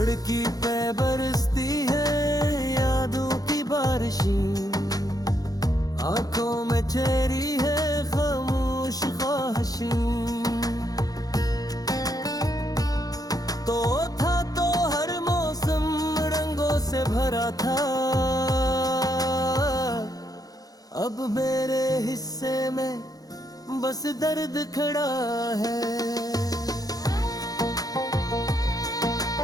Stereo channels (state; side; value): late; right; 0.18 ms